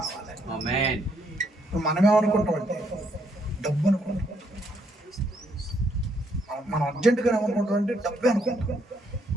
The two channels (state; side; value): normal; both; correlation 0.72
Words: మనమేమనుకుంటామంటే డబ్బు అనుకుంటాం. మనం అర్జెంటుగా ఏమనుకుంటామంటే డబ్బే అనుకుంటాం.